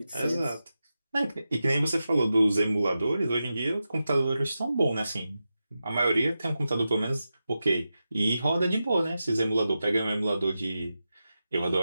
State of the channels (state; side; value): inverted; both; correlation -0.91